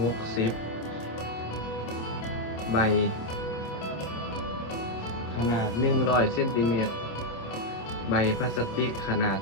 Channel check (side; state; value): right; late; 27 ms